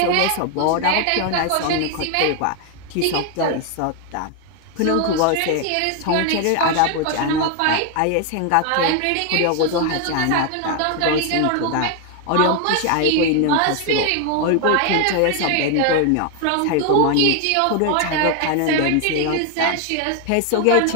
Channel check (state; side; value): different; both; correlation 0.01